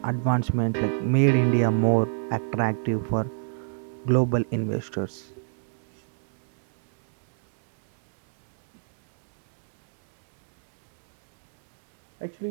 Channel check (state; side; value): silent; left; 62 dB below the other